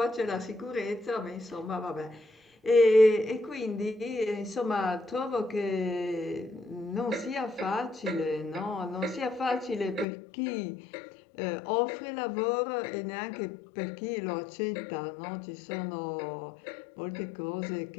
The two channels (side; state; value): right; drops out; at 10.1 s